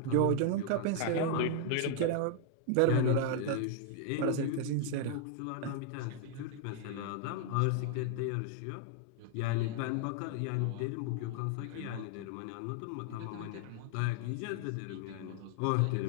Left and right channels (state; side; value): different; both; correlation 0.00